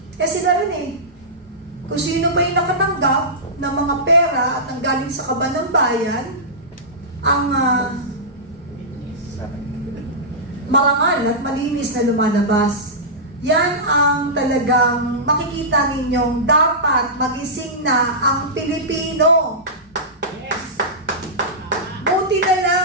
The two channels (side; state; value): both; normal; correlation -0.15